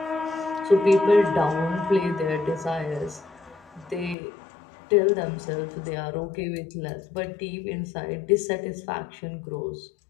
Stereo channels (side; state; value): right; drops out; at 4.2 s